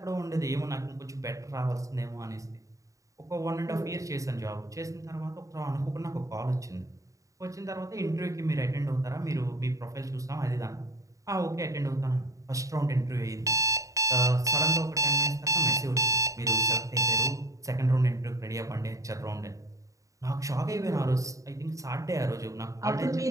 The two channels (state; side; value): late; left; 0.16 ms